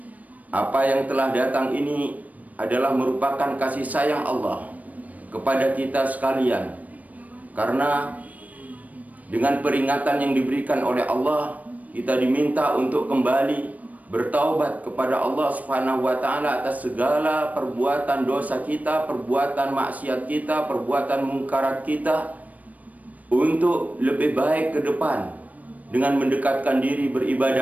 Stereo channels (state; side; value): late; left; 0.072 ms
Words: Apa yang telah datang ini adalah merupakan kasih sayang Allah kepada kita sekalian. Karena dengan peringatan yang diberikan oleh Allah, kita diminta untuk kembali bertaubat kepada Allah Subhanahu wa Ta'ala atas segala perbuatan dosa kita, perbuatan maksiat kita, perbuatan mungkarat kita, untuk lebih baik ke depan dengan mendekatkan diri